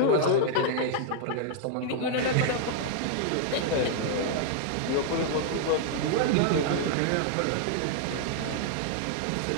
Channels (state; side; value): different; both; correlation -0.01